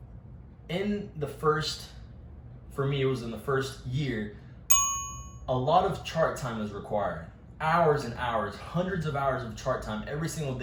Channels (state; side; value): identical; both; correlation 1.00